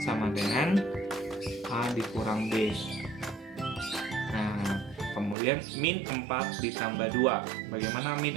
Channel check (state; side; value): drops out; left; at 5.4 s